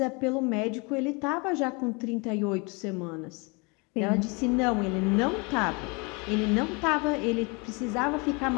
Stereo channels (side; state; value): right; quieter; 30.0 dB